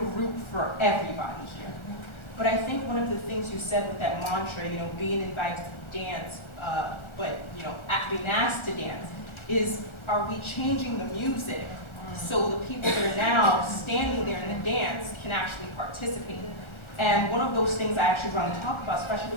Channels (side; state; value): right; late; 1.4 ms